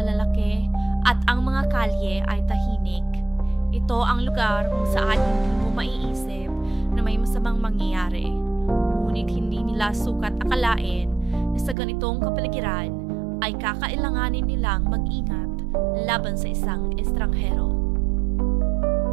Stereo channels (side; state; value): left; drops out; at 11.8 s